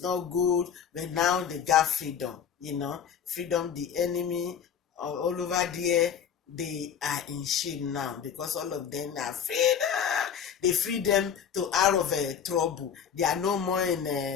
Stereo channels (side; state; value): right; quieter; 7.9 dB